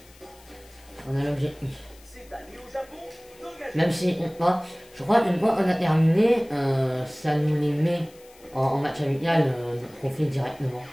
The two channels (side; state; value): left; noise; hiss, 26 dB below the sound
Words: On a l'objectif. Même si, je crois qu'une fois on a terminé, ça nous les met en match amical, notre profil directement.